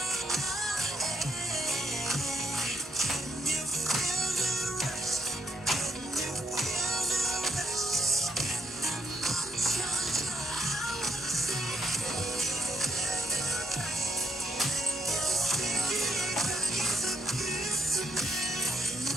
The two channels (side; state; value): both; normal; correlation 0.77